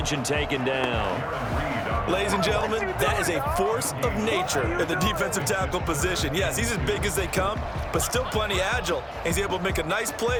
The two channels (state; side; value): identical; both; correlation 1.00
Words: and taken down. Ladies and gentlemen, that is a force of nature in the defensive tackle position. Yes, he's as big as they come, but still plenty agile. He's able to make a nice